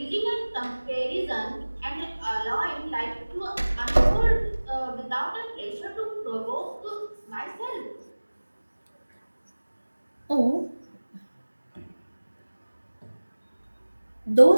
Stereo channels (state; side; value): inverted; both; correlation -1.00